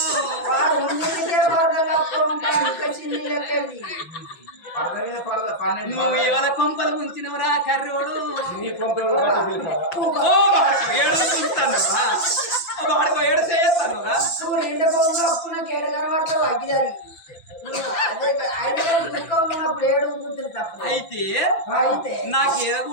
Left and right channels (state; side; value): late; right; 6.0 ms